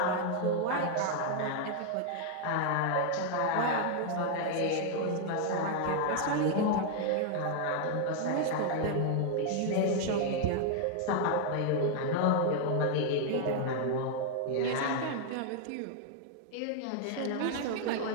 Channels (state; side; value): different; both; correlation 0.00